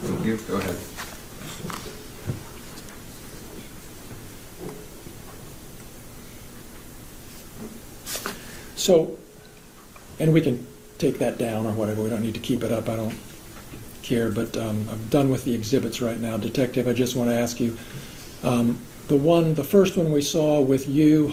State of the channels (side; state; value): both; identical; correlation 1.00